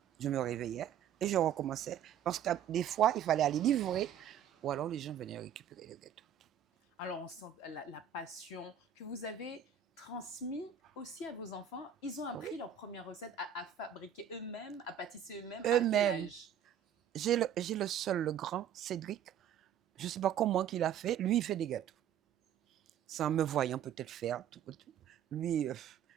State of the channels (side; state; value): left; quieter; 9.3 dB